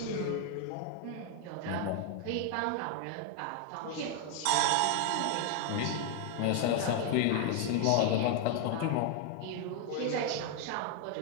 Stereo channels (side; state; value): both; different; correlation 0.01